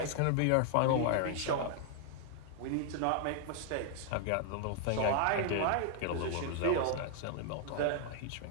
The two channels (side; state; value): both; different; correlation 0.00